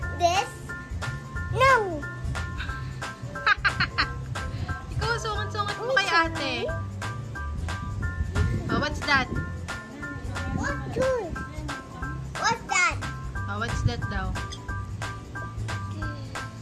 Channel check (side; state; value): both; identical; correlation 1.00